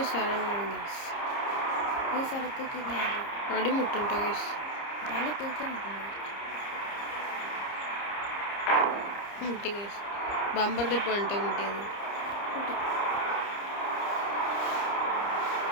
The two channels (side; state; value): right; late; 30 ms